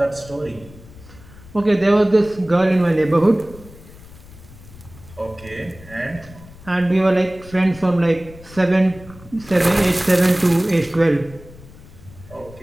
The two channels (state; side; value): noise; left; rumble, 20 dB below the sound